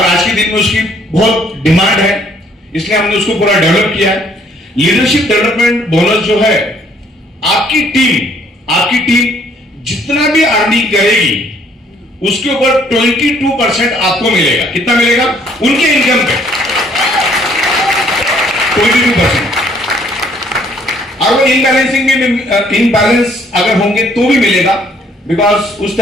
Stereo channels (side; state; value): both; normal; correlation 0.63